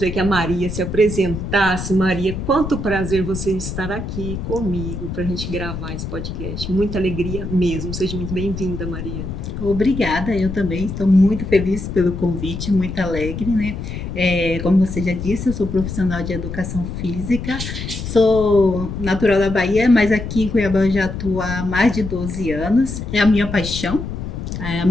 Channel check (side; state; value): left; noise; rumble, 6 dB below the sound